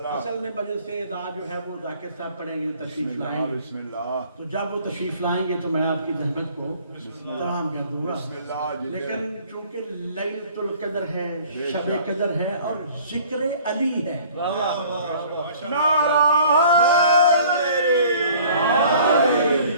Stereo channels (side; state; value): both; inverted; correlation -0.52